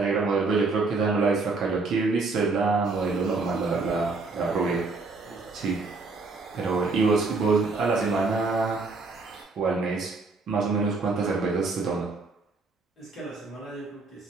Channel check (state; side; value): quieter; left; 3.8 dB